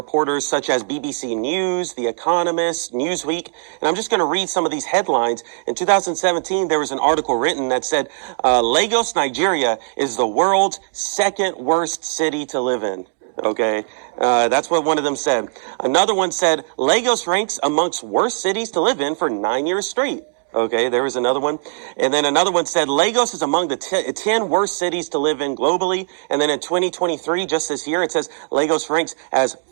such as BBC News, The Economist, Newsweek. And I'm just going to read some of these headlines. In 2017, there was an article written that said, Lagos, Nigeria is the world's second worst city to live in. Okay, that's what one of them said. Another one said, Lagos ranks amongst worst cities to live in for 9 years straight. Okay, there was another one. And then another one said, Lagos is among the 10 worst cities to live in globally. And then in 2023, just this year, it says Lagos ranks as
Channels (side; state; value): left; silent; digital silence